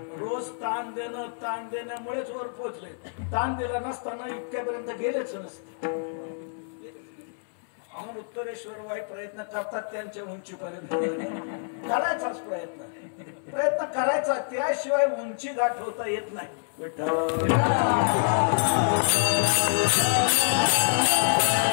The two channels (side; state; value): right; silent; 60 dB below the other